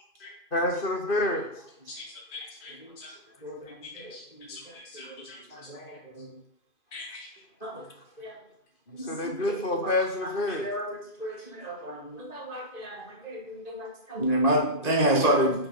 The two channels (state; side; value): late; right; 2.5 ms